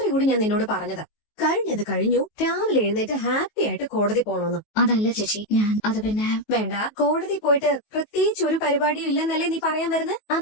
കൂടി ഞാൻ നിന്നോട് പറഞ്ഞതാ, കഴിഞ്ഞത് കഴിഞ്ഞു, രാവിലെ എഴുന്നേറ്റ് ഹാപ്പി ആയിട്ട് കോടതി പോണോന്ന്. അതല്ല ചേച്ചി, അത് പിന്നെ വേണ്ട, കോടതി പോയിട്ട് പ്രത്യേകിച്ച് ഒരു പരിപാടിയും ഇല്ലെന്നല്ലേ നീ പറയാൻ വരുന്നത്?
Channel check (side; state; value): right; late; 19 ms